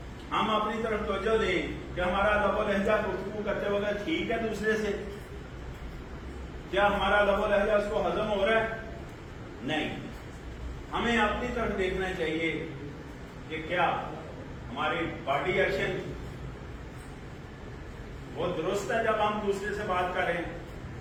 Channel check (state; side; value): identical; both; correlation 1.00